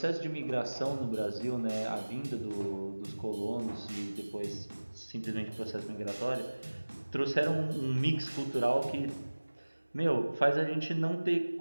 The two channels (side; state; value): both; inverted; correlation -1.00